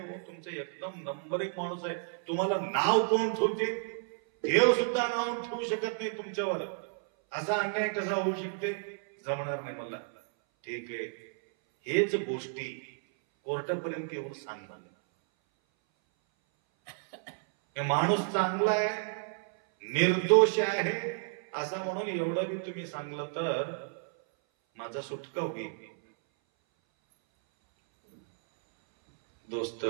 तुमचं एकदम नंबर 1 माणूस आहे. तुम्हाला नाव कोण ठेवते, देव सुद्धा नाव ठेवू शकत नाही तुमच्यावर. असा अन्याय कसा होऊ शकते, जमणार नाही मला. ठीक आहे, हेच गोष्टी कोर्टापर्यंत येऊन सांगणार. माणूस चांगला आहे, निर्दोष आहे असं म्हणून एवढं बी तुम्ही सांगलं तर माझा सुटका होईल. दोस्त,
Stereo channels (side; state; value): left; silent; 57 dB below the other